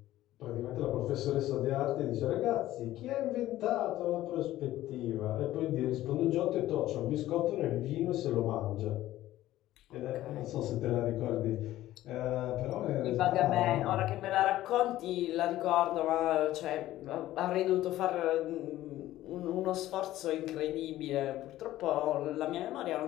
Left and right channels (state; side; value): quieter; right; 14.8 dB